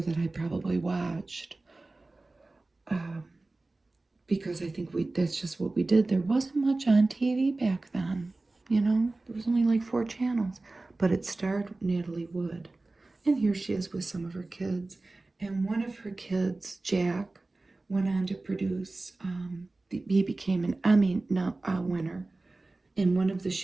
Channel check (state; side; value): quieter; left; 3.1 dB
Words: that I probably watched. Because I think that's just what we did. There wasn't much on TV back then, you know? There was only like 4 channels. But it starred Natalie Wood. And here she is with some of her kids. And one of her kids, Jack, went on to produce, he became an Emmy winner. And one of the